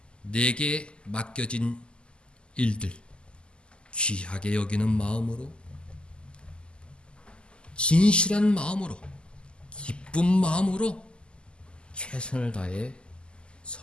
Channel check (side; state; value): right; late; 0.050 ms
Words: 내게 맡겨진 일들 귀하게 여기는 마음으로, 진실한 마음으로, 기쁜 마음으로 최선을 다해